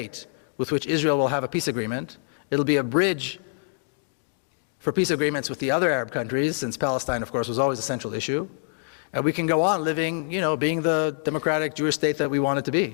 with which Israel will have a peace agreement. It'll be a bridge for peace agreements with the other Arab countries, since Palestine, of course, was always a central issue. And we can go on living, being the democratic Jewish state that we want it to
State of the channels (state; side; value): silent; right; digital silence